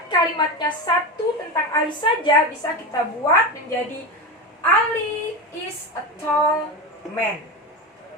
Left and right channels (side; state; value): both; normal; correlation 0.20